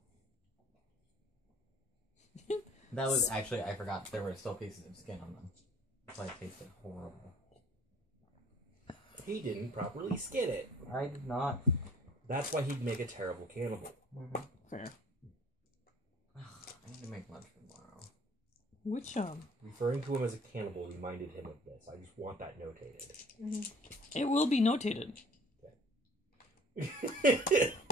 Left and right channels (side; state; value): both; normal; correlation 0.52